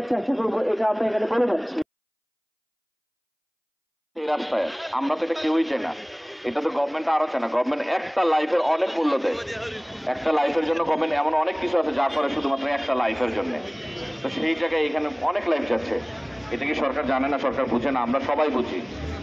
চেষ্টা করবো, এটা আমরা এখানে বলে যাচ্ছি। এই রাস্তায় আমরা তো এটা কেউই চাই না, এটা তো গভর্নমেন্ট আরো চায় না। গভর্নমেন্ট একটা লাইফের অনেক মূল্য দেয়, একটা লাইফের জন্য গভর্নমেন্ট এমন অনেক কিছু আছে যা করে শুধুমাত্র একটা লাইফের জন্য। তো সেই জায়গায় এখানে অনেক লাইফ যাচ্ছে, এটা কি সরকার জানে না, সরকার বুঝে না? আমরা সবাই বুঝি।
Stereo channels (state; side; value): identical; both; correlation 1.00